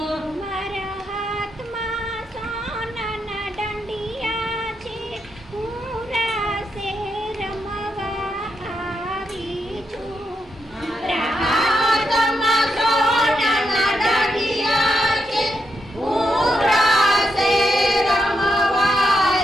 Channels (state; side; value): normal; both; correlation 0.83